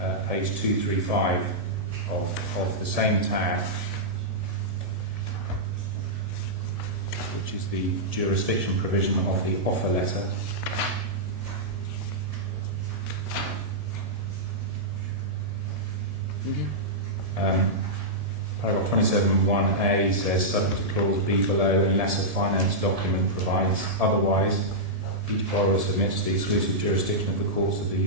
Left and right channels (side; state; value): left; late; 1.7 ms